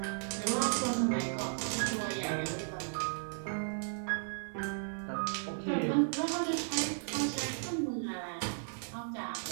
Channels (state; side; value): silent; left; digital silence